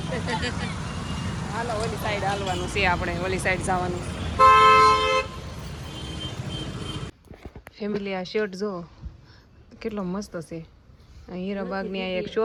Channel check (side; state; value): both; identical; correlation 1.00